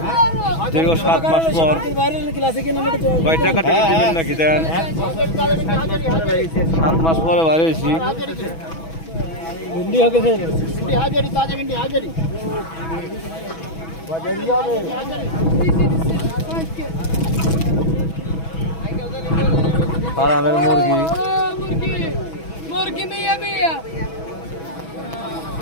দীর্ঘ 7 মাস পর কয় টাকা টাকা দিবেন নাকি দেন 7 মাস পরে বাইরে হয়েছি ফার্মের মুরগি মুরগি মিয়া মিয়া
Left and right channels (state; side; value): late; right; 6.1 ms